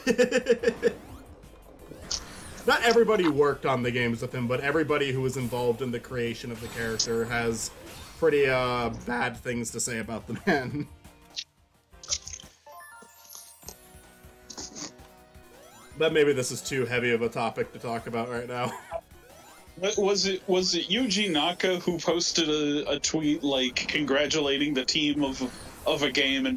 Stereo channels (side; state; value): both; identical; correlation 1.00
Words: Not everybody worked on the games with him, but everybody who was involved in the creation of the character has pretty bad things to say about the man. But maybe this is too heavy of a topic to talk about right now. Was it Yuji Naka who posted a tweet like congratulating the team of a game